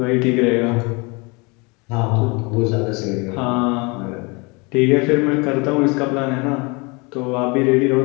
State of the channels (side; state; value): right; quieter; 28.5 dB